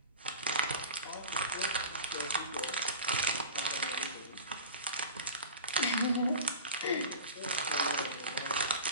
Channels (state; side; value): inverted; both; correlation -0.35